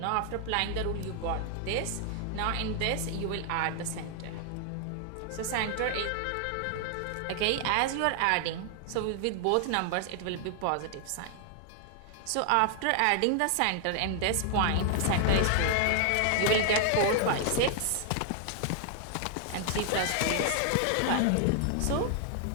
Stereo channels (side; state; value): both; different; correlation 0.00